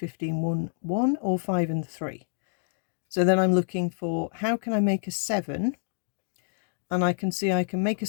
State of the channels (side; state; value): right; silent; digital silence